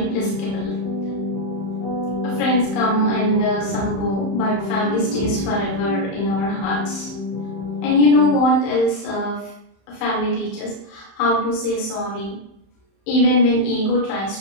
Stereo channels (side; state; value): right; late; 31 ms